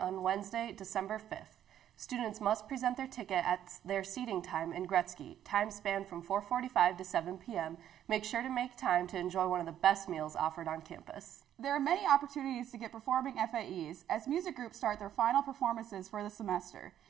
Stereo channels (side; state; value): left; quieter; 10.8 dB